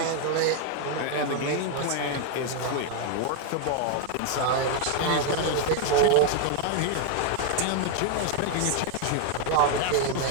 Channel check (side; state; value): both; different; correlation 0.00